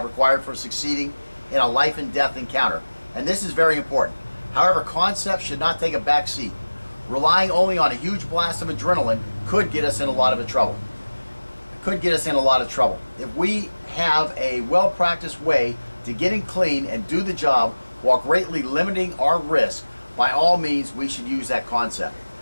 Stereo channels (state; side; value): inverted; both; correlation -1.00